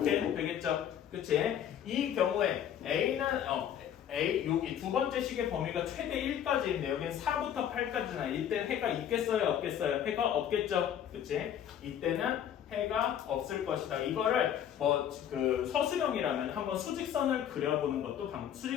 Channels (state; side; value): quieter; right; 9.7 dB